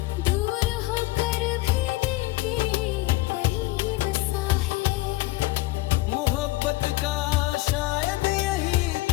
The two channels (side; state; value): right; quieter; 19.5 dB